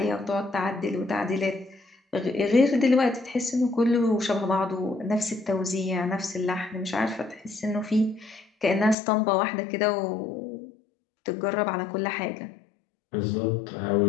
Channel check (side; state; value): right; drops out; at 9.0 s